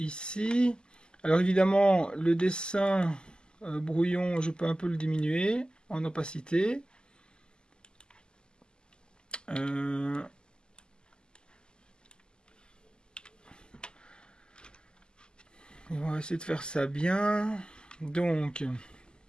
Alors, évidemment, le dessin brouillon, je peux un peu le diminuer en opacité. On va essayer de faire ça bien. Donc,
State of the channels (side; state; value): right; late; 0.046 ms